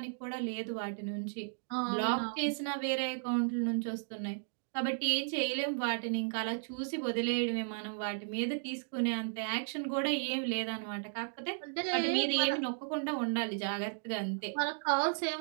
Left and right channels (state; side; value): silent; left; digital silence